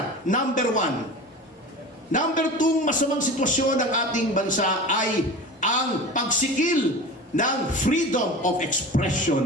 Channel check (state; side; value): normal; both; correlation 0.33